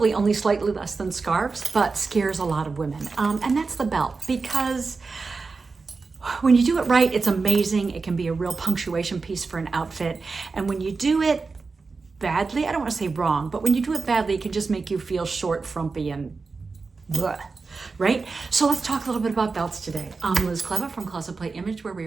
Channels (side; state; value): left; quieter; 4.3 dB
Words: only slightly less than scarves, but scares a lot of women. And that's the belt, because when you do it right, it's amazing. It can be a real punctuation piece for an outfit. And when you do it badly, I don't want to say wrong, but when you do it badly, it can just make you feel short, frumpy, and bleh. Right? So let's talk a little bit about belts today. I'm Liz Cleva from Closetplayimage, where we